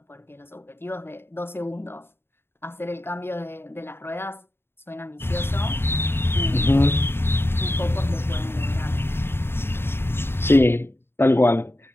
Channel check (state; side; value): late; right; 0.11 ms